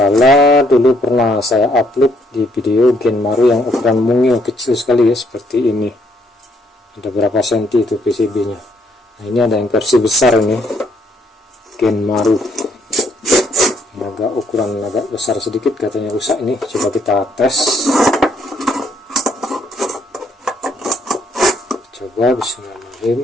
dulu pernah saya upload di video Genmaru yang ukuran mungil kecil sekali ya, seperti ini. Ada berapa senti itu PCB-nya. Nah, ini ada yang versi besar ini, Genmaru. Agak ukuran agak besar sedikit, katanya rusak ini. Coba kita tes. Coba,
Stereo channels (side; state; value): both; normal; correlation 0.69